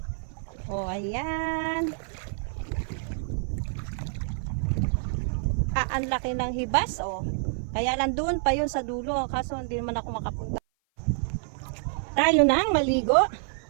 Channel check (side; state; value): left; silent; 55 dB below the other